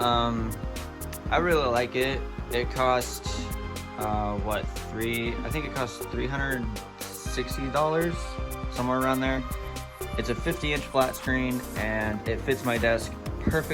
really like it. It cost I think it cost $360, somewhere around there. It's a 50-inch flat screen, and it fits my desk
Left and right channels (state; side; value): identical; both; correlation 1.00